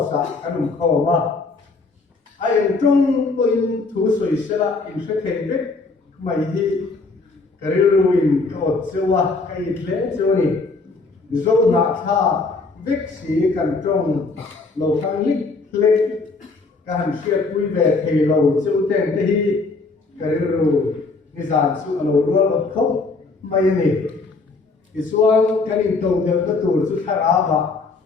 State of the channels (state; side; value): quieter; right; 3.8 dB